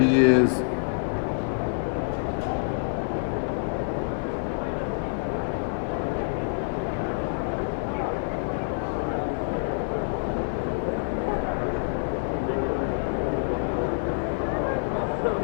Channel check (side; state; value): right; silent; digital silence